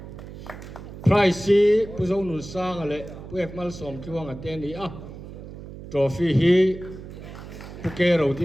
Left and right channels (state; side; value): noise; right; hum, 13 dB below the sound